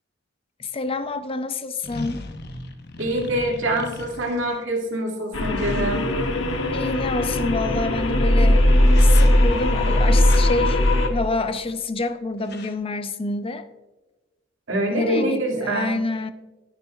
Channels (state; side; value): normal; both; correlation 0.70